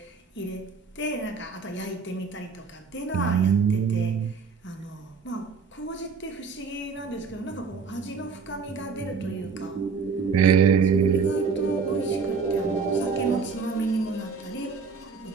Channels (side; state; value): left; quieter; 5.3 dB